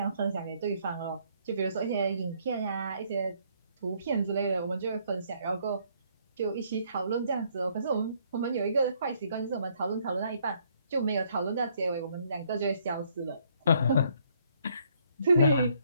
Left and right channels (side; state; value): both; inverted; correlation -0.67